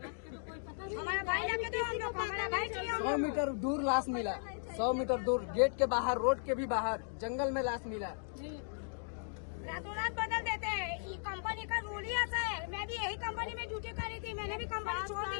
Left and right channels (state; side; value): silent; right; digital silence